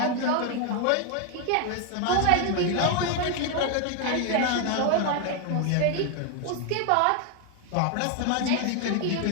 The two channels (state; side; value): different; both; correlation 0.01